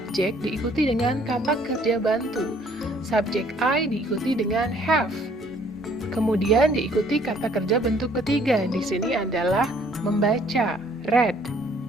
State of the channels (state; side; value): normal; both; correlation 0.61